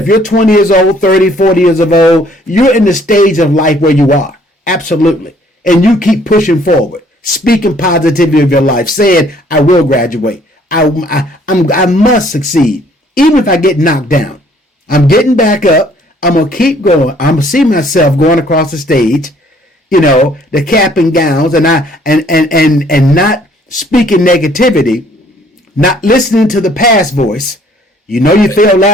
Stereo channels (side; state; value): both; normal; correlation 0.61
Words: you're 20 years old, 30, 40 years of old, you're in the stage of life where you are. Absolutely. And you keep pushing forward, speaking positivity of your life, saying, I will graduate. I must succeed. Even if I get knocked down, I'm getting back up. I'm going to keep going. I'm going to see myself going across the stage, the cap and gowns, and not speaking negativity, not listening to the past voice. You failed